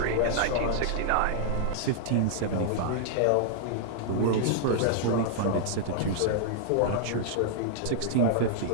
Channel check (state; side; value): different; both; correlation -0.01